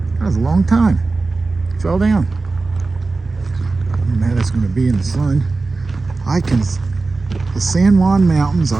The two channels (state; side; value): quieter; left; 3.7 dB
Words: That was a long time. Fell down. I don't know how that's going to be in the sun. The San Juan Mountains,